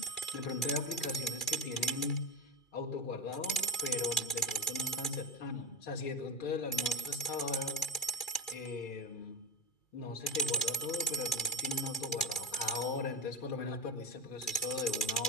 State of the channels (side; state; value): right; late; 2.4 ms